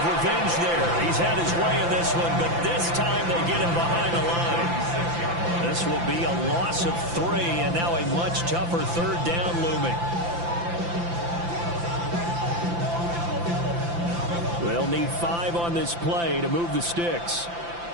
revenge there. He's had his way in this one, but this time they get him behind the line. This will be a loss of 3, and now a much tougher 3rd down looming. They'll need 5 on this play to move the sticks.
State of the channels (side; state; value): left; late; 5.9 ms